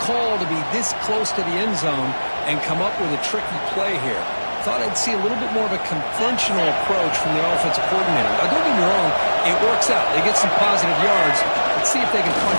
call to be this close to the end zone and come up with a tricky play here. Thought I'd see a little bit more of a conventional approach from the offensive coordinator. Now, don't get me wrong, it works out. They get some positive yards. Let's see if they can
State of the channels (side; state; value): both; inverted; correlation -1.00